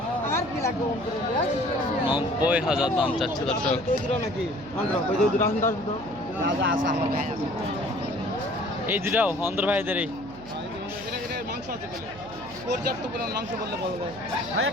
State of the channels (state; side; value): noise; right; hum, 19 dB below the sound